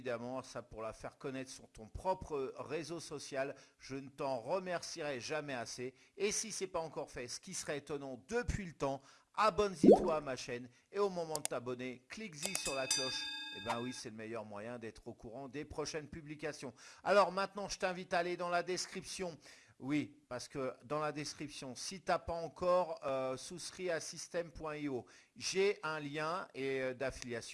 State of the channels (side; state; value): both; identical; correlation 1.00